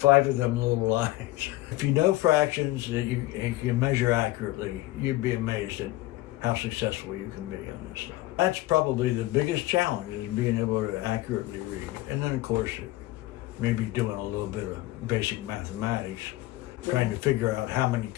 of them little lines. If you know fractions that you can measure accurately, you'd be amazed at how successful you can be on this stuff. That's probably the biggest challenge, is being able to accurately read. And then of course, maybe doing a little bit of basic mathematics, trying to figure out how many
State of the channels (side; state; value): right; quieter; 17.8 dB